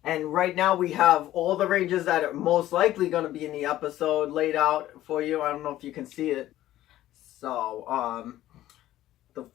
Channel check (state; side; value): quieter; right; 14.1 dB